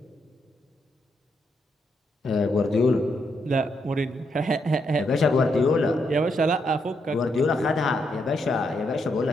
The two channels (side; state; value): both; normal; correlation 0.79